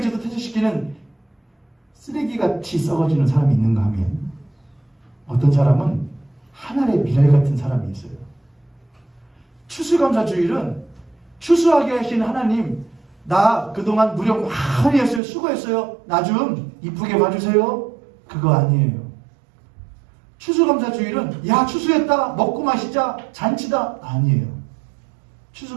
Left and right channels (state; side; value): drops out; left; at 15.2 s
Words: 퇴치시키는 쓰레기같이 썩어지는 사람이 있는가 하면 어떤 사람은 하늘의 미랄 같은 사람이 있어요. 추수감사주일은 추수하게 하신 하나님 나 그동안 무력 많이 했어요. 수고했어요. 나 좀 이쁘게 봐주세요. 그거 아니에요. 추수감사주일은 야 추수했다 먹고 마시자 잔치다 아니에요.